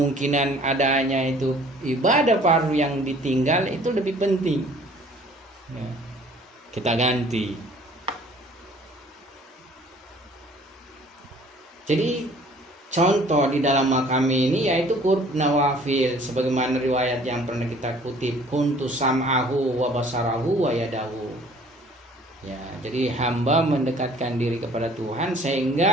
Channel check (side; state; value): both; normal; correlation 0.53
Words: adanya itu ibadah fardu yang ditinggal itu lebih penting, ya. Kita ganti. Jadi contoh di dalam makam ini yaitu qurb nawafil, sebagaimana riwayat yang pernah kita kutip, kuntu sam'ahu wa basarahu wa yadahu. Ya, jadi hamba mendekatkan diri kepada Tuhan